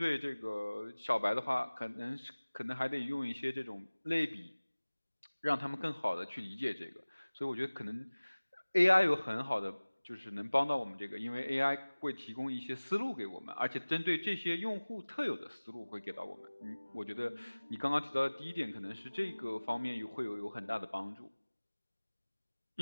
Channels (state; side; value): inverted; both; correlation -1.00